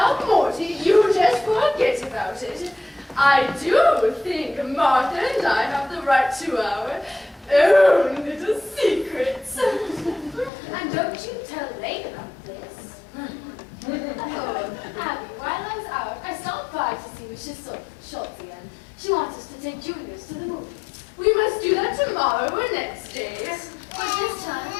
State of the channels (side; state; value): right; drops out; at 10.5 s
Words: Morty, you just forget about it. I do think Martha and I have the right to our own little secrets. And don't you tell Lane about this. Oh, Abby, while I was out, I stopped by to see Mrs. Schultz again. She wants us to take juniors to the movies. We must do that tomorrow or next day. But this time,